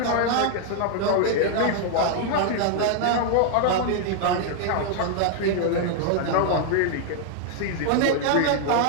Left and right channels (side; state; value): both; different; correlation 0.00